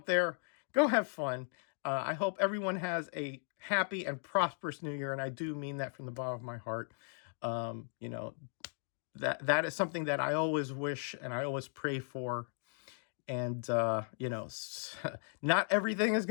there. Go have fun. I hope everyone has a happy and prosperous New Year, and I do mean that from the bottom of my heart. That is something that I always wish and I always pray for. And, not everything is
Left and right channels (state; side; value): silent; right; 53 dB below the other